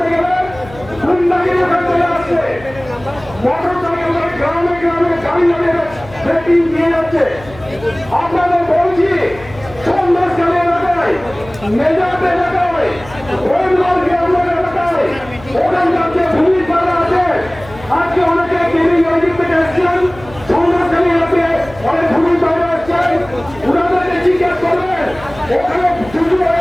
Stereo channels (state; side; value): noise; left; hum, 19 dB below the sound